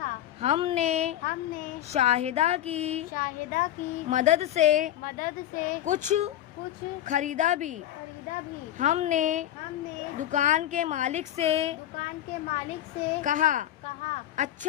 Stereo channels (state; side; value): quieter; right; 12.2 dB